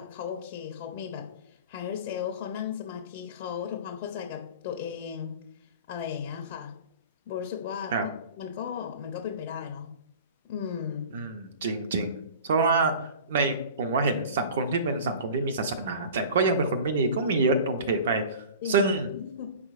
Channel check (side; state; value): both; inverted; correlation -0.38